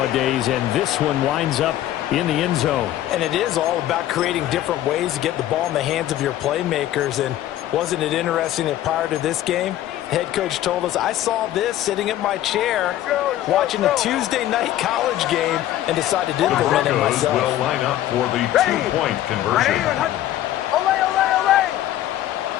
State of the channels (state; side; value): quieter; right; 13.2 dB